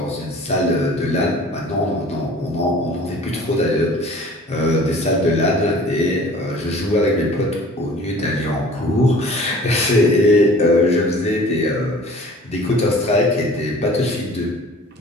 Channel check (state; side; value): normal; both; correlation 0.47